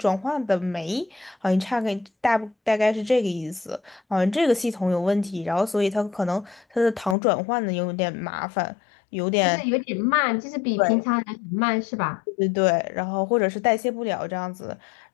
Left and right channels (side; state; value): right; drops out; at 7.2 s